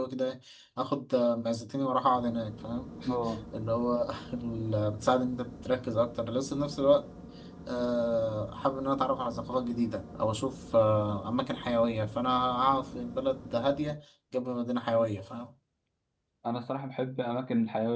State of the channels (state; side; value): identical; both; correlation 1.00